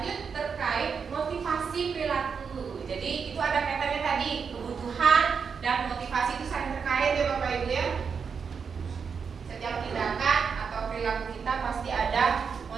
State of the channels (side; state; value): left; quieter; 6.1 dB